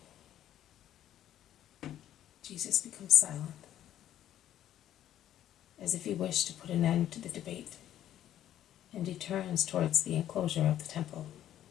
Jesus becomes silent, as if he wished to put an end to the debate, and he turns towards the enclosure of the temple.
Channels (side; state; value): right; quieter; 11.8 dB